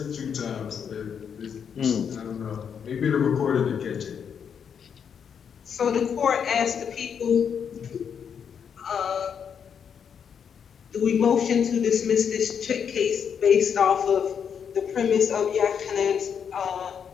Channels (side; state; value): right; quieter; 7.4 dB